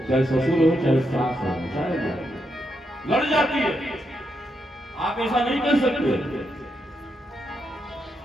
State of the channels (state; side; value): normal; both; correlation 0.82